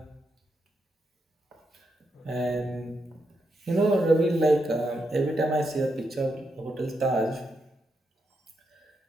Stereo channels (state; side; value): normal; both; correlation 0.83